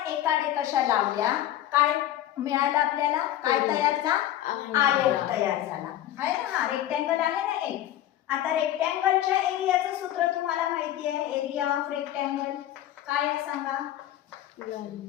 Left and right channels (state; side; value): quieter; right; 12.6 dB